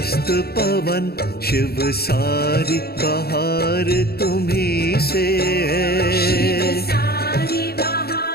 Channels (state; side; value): late; right; 0.46 ms